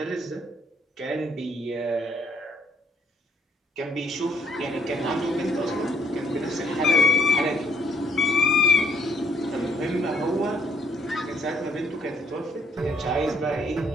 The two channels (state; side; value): normal; both; correlation 0.67